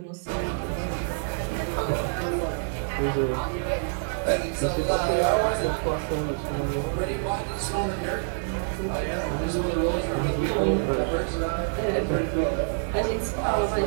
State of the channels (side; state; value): left; silent; 60 dB below the other